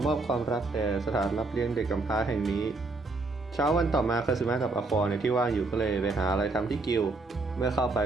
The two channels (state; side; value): quieter; left; 3.5 dB